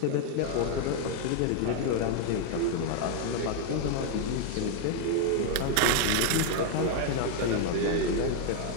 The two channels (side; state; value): both; different; correlation 0.00